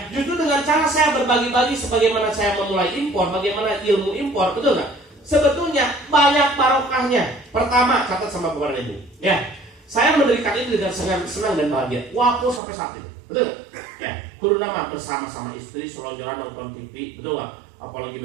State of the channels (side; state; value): left; drops out; at 12.6 s